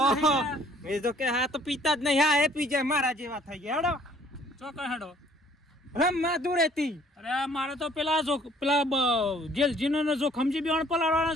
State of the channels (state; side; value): normal; both; correlation 0.58